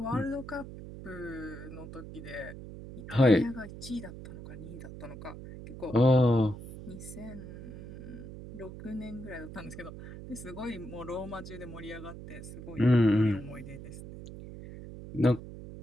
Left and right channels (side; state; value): right; noise; hum, 12 dB below the sound